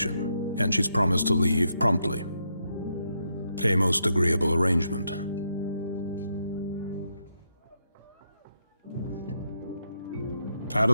and she's promised to leave promptly. A most agreeable arrangement. Out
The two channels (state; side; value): inverted; both; correlation -0.80